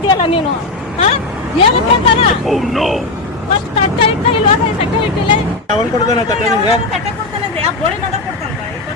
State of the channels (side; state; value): right; quieter; 3.2 dB